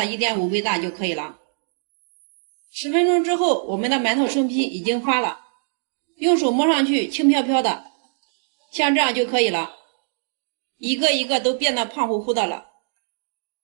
1.5倍大就可以了。10分钟之后，我们的馒头生坯已经发了，用手摸上去轻飘飘的，像这样就可以了，一个一个都变得胖乎乎的了。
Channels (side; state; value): left; silent; digital silence